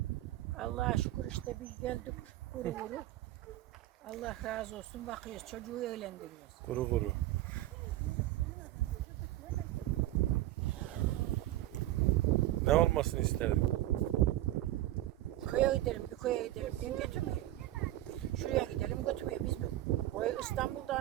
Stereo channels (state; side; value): quieter; left; 14.8 dB